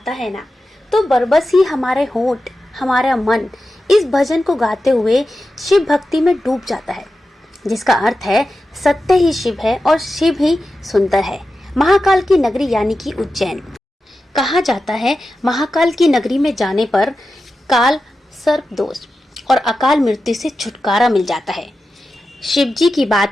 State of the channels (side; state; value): both; normal; correlation 0.92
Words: है ना, तो बरबस ही हमारे होंठ, हमारा मन इस भजन को गाते हुए शिव भक्ति में डूब जाता है, जिसका अर्थ है सत्य ही शिव है और शिव ही सुंदर है। महाकाल की नगरी यानी कि उज्जैन। कहा जाता है महाकाल की नगरी में जाने पर काल, सर्प दोष और अकाल मृत्यु से छुटकारा मिल जाता है। शिव जी की